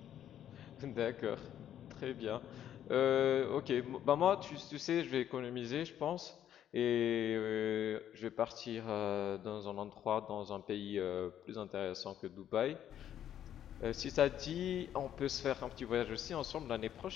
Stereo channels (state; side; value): quieter; right; 10.5 dB